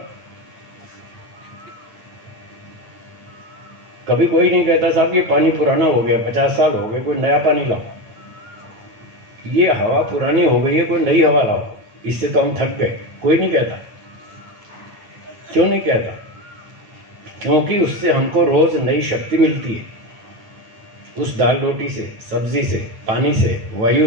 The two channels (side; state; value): left; late; 8.8 ms